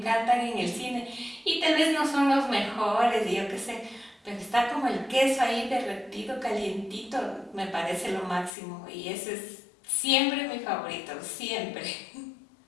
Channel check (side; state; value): right; drops out; at 8.5 s